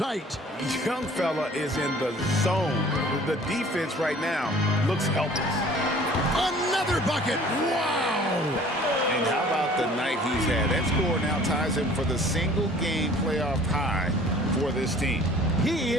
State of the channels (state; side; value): normal; both; correlation 0.50